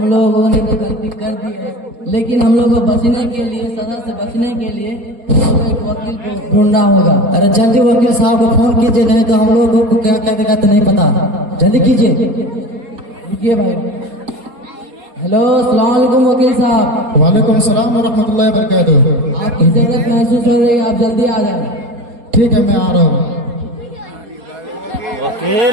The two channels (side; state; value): left; late; 4.2 ms